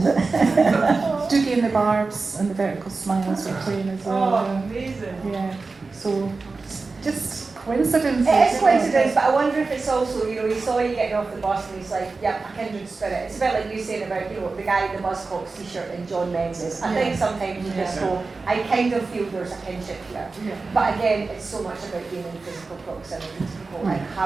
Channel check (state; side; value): quieter; left; 4.0 dB